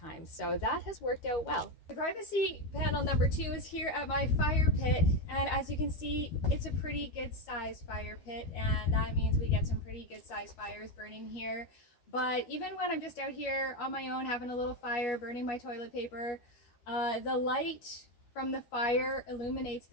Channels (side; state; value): right; late; 13 ms